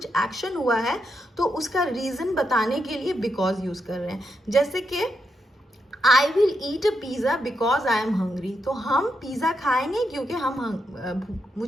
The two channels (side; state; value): both; normal; correlation 0.82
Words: एक्शन हुआ है तो उसका रीजन बताने के लिए बिकॉज यूज कर रहे हैं. जैसे कि I will eat a pizza because I am hungry, तो हम पिज़्ज़ा खाएंगे क्योंकि